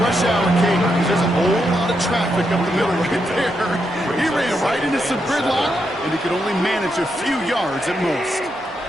hour, Kate, because there's a whole lot of traffic up the middle right there. He ran right into some gridlock, and he could only manage a few yards at most.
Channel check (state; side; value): normal; both; correlation 0.82